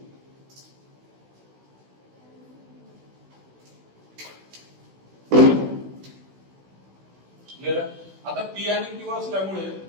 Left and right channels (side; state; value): left; late; 16 ms